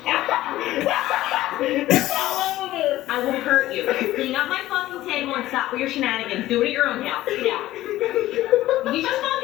It's all over. I will hurt you. Clean up my fucking table and stop with your shenanigans. Do it at your own house. Get out. You just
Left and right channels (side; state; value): right; quieter; 15.4 dB